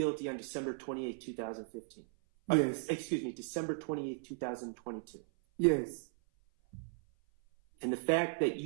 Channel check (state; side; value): silent; left; 54 dB below the other